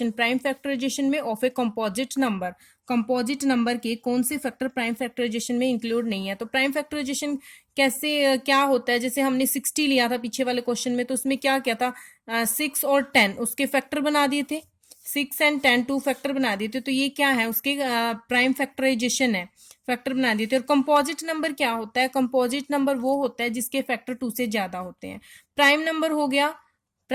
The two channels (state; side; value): identical; both; correlation 1.00